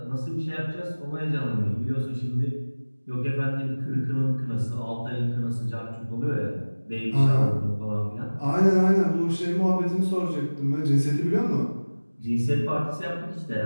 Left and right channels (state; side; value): inverted; both; correlation -1.00